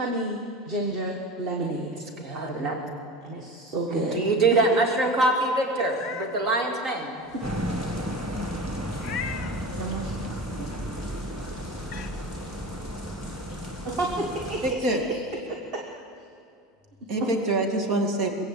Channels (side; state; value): both; normal; correlation 0.30